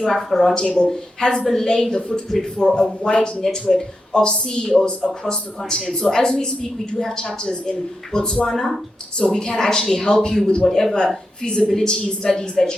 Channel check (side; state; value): both; normal; correlation 0.87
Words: Africa Roundtable has been laying the footprint for a wide network of CEOs across the continent. So as we speak, we do have chapters in Botswana, so we can actually help you with whatever feasibility studies that